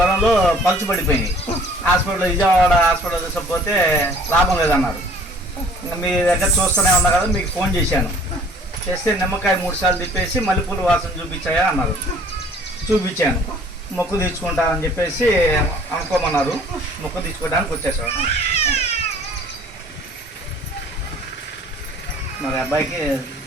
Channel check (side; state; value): both; normal; correlation 0.53